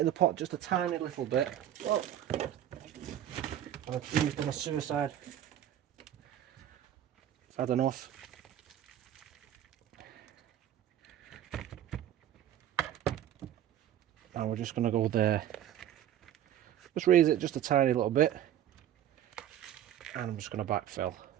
the pot just a tiny little bit. Oh. I've used on a suicide. I've had enough. And we're just going to go there. Just raise it just a tiny little bit. And I'm just going to backfill.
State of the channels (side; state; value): left; quieter; 11.2 dB